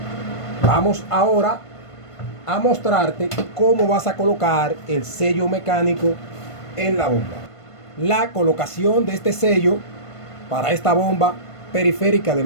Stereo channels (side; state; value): right; late; 1.5 ms